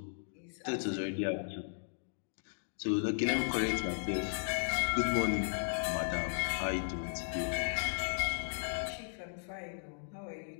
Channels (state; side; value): silent; right; digital silence